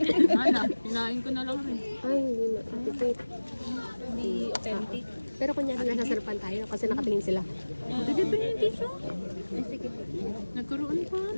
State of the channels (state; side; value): inverted; both; correlation -1.00